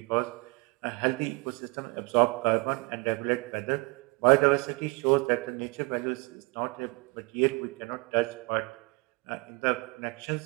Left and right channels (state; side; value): quieter; left; 28.0 dB